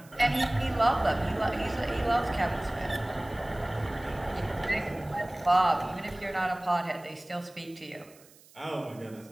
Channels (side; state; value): right; noise; hiss, 25 dB below the sound